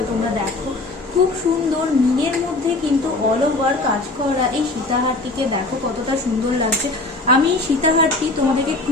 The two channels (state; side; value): quieter; right; 3.1 dB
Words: তোমরা দেখো। খুব সুন্দর মিনের মধ্যে কিন্তু অল ওভার কাজ করা এই সীতাহারটিকে দেখো কতটা সুন্দর লাগছে। আমি এই সীতাহারটি তোমাদেরকে